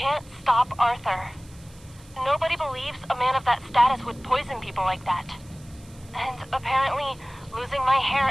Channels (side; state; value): right; noise; hiss, 25 dB below the sound